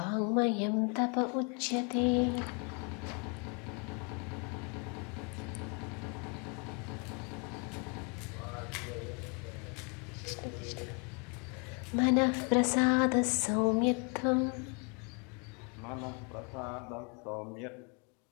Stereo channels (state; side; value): quieter; right; 35.7 dB